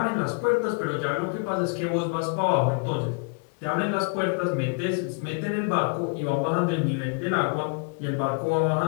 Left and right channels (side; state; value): right; quieter; 36.6 dB